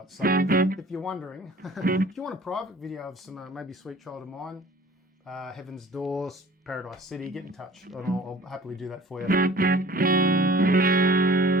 So if you're wondering, if you want a private video of some maybe Sweet Child of Mine, Heaven's Doors, Paradise City, get in touch and I'll happily do that for you.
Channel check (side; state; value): both; normal; correlation 0.48